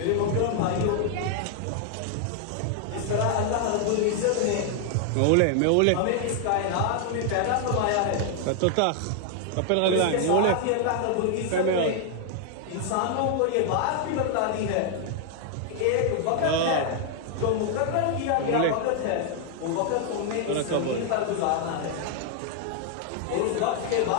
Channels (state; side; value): different; both; correlation 0.00